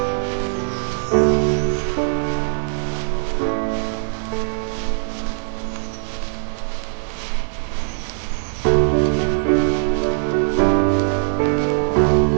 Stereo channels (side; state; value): left; silent; digital silence